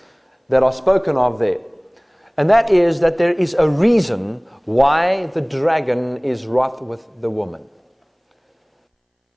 that are spoken of there. And that is that there is a reason why the dragon is wroth with the woman.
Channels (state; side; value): identical; both; correlation 1.00